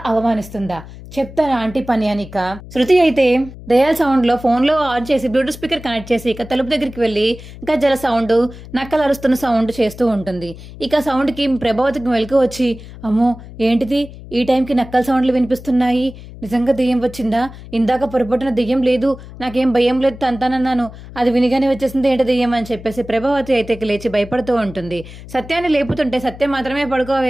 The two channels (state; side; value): noise; left; hum, 16 dB below the sound